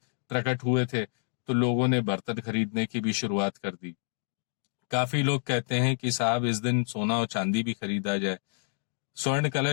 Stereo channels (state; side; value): silent; right; digital silence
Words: प्रकट हुए थे, तो लोगों ने बर्तन खरीदने की भी शुरुआत कर दी। काफी लोग कहते हैं कि साहब इस दिन सोना और चांदी भी खरीदा जाए। स्वर्ण